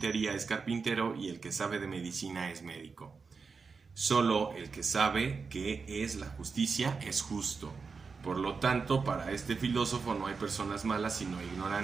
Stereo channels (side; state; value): left; quieter; 5.0 dB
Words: es carpintero y el que sabe de medicina es médico. Solo el que sabe qué es la justicia es justo. Por lo tanto, para este filósofo no hay personas malas sino